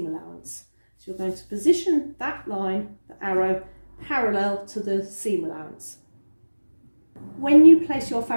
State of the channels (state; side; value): inverted; both; correlation -1.00